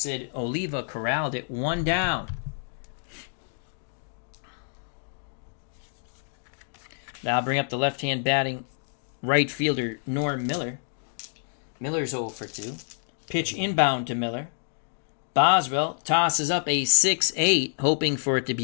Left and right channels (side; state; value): right; silent; digital silence